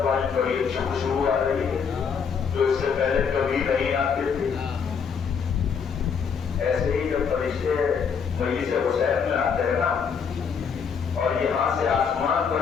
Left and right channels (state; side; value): quieter; right; 6.5 dB